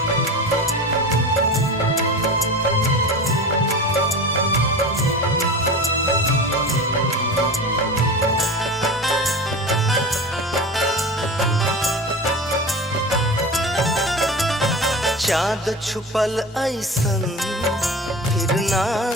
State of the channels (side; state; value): both; normal; correlation 0.31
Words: चाँद छुपल ऐसन फिर ना